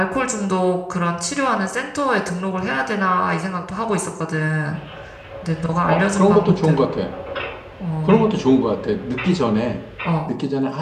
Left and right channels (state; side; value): identical; both; correlation 1.00